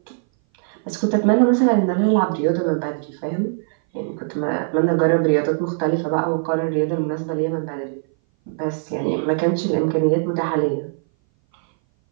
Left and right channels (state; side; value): silent; left; 59 dB below the other